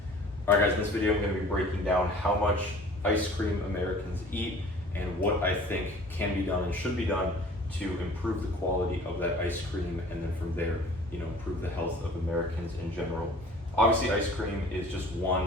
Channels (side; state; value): both; normal; correlation 0.47